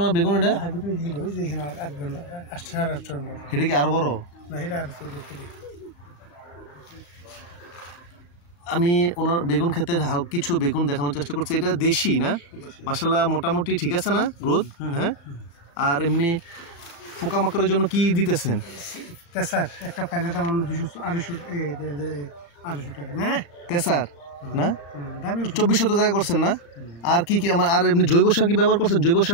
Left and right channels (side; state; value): right; late; 34 ms